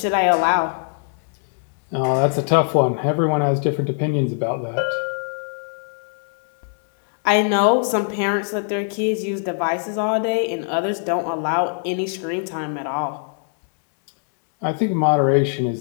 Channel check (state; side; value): silent; right; 64 dB below the other